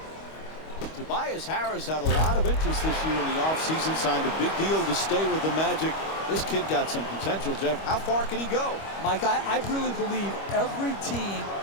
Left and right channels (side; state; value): right; late; 25 ms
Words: Tobias Harris had a lot of interest this year in the offseason, signed a big deal to stay with the Magic. This kid got some potential, Jeff. How far can he go? Mike, I really believe every team